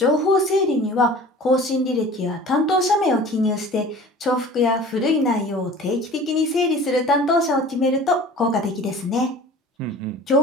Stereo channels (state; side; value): normal; both; correlation 0.43